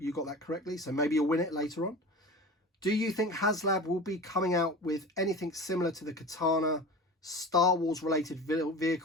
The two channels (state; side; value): normal; both; correlation 0.35